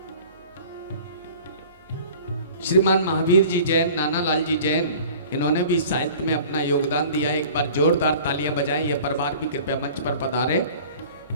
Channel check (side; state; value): both; inverted; correlation -0.45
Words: श्रीमान महावीर जी जैन, नाना लाल जी जैन, इन्होंने भी साहित्य में अपना योगदान दिया। एक बार जोरदार तालियां बजाएं। यह परिवार भी कृपया मंच पर पधारे।